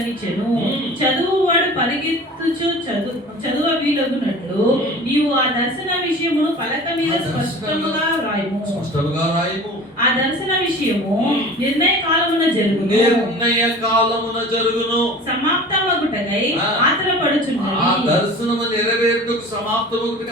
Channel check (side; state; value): both; normal; correlation 0.40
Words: చదువువాడు పరిగెత్తుచు చదువ వీలగునట్లు నీవు ఆ దర్శన విషయమును పలక మీద స్పష్టముగా రాయము. ఆ దర్శన విషయము నిర్ణయ కాలమున జరుగును. సమాప్తమగుటకై ఆత్రపడుచున్నది. ఆ దర్శనము నెరవేరుటకు